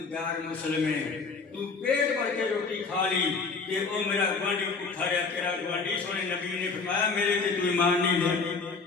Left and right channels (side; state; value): right; quieter; 4.5 dB